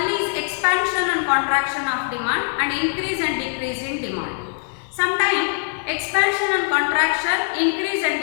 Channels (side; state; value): right; silent; digital silence